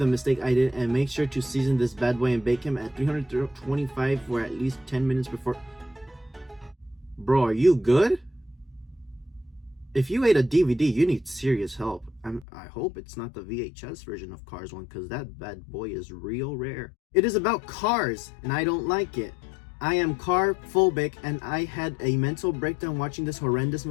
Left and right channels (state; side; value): drops out; right; at 12.5 s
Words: mistake I did, and make sure to season this bad boy and bake him at 325 for at least 10 minutes before. Bro, are you good? If you ate a DVD, you need serious help. I hope it's not the VHS version of Cars 1, because that bad boy is real rare. It is about cars, and I don't like it. I am car phobic, and I had a mental breakdown watching this horrendous